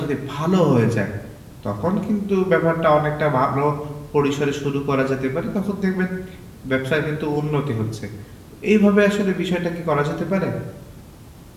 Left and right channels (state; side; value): identical; both; correlation 1.00